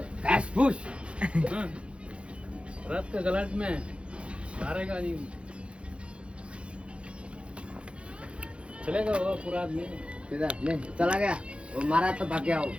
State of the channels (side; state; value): left; late; 0.059 ms